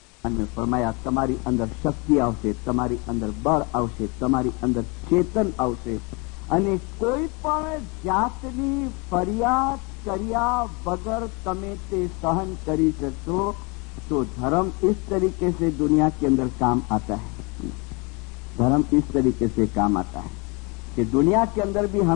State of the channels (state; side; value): quieter; right; 29.6 dB